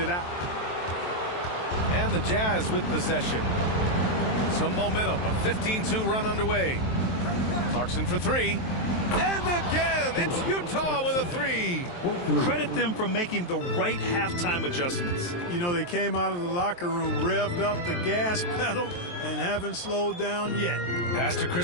out. And the Jazz with possession. Some momentum, a 15-2 run underway. Clarkson for 3. And again, it's Utah with a 3. Credit them for making the right halftime adjustments. You know, they came out of the locker room, revved up the gas pedal, and haven't slowed down yet. Pass to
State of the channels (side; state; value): right; late; 23 ms